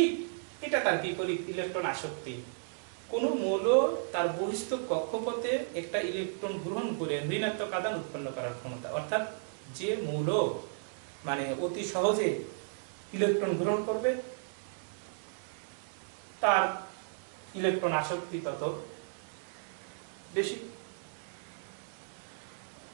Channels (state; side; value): silent; left; digital silence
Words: এটা তার বিপরীত ইলেকট্রন আসক্তি। কোন মৌল তার বহিস্থ কক্ষপথে একটা ইলেকট্রন গ্রহণ করে ঋণাত্মক আধান উৎপন্ন করার ক্ষমতা, অর্থাৎ যে মৌল মানে অতি সহজে ইলেকট্রন গ্রহণ করবে তার ইলেকট্রন আসক্তি তত বেশি।